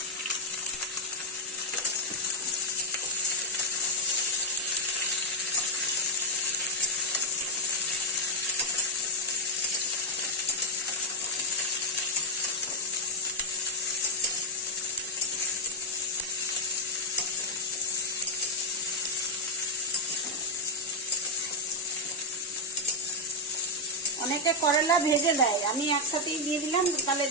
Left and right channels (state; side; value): normal; both; correlation 0.02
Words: অনেকে করলা ভেজে দেয়, আমি একসাথেই দিয়ে দিলাম, তাহলে